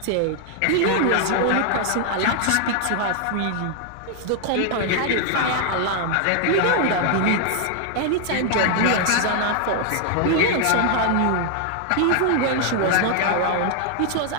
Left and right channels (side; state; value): both; different; correlation 0.00